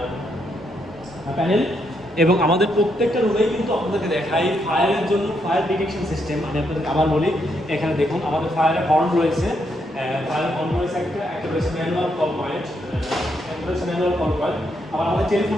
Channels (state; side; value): normal; both; correlation 0.77